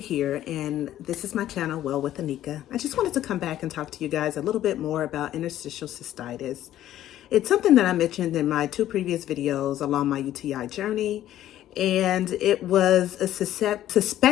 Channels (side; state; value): right; quieter; 12.7 dB